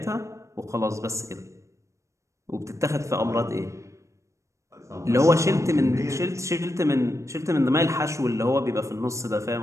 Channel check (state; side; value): late; left; 0.15 ms